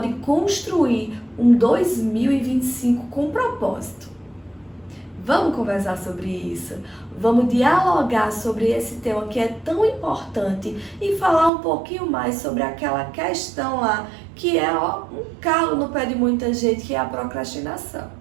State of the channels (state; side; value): drops out; left; at 11.5 s